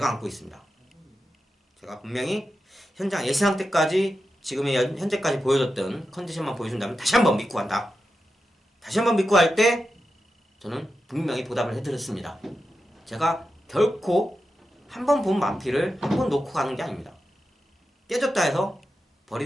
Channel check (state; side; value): normal; both; correlation 0.90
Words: 안고 있습니다. 제가 분명히 현장 예상 때까지 지금의 현재까지 보여줬던 컨디션만 보여준다면 다시 한번 믿고 간다. 다시 한번 믿고 할 때 저는 분명히 보답을 해드렸습니다. 제가 결코 한 번 본 마필을 한 번 놓고 가는 게 아닙니다. 깨졌다 해서